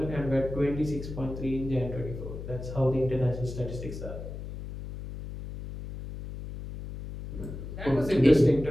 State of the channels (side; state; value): left; noise; hum, 9 dB below the sound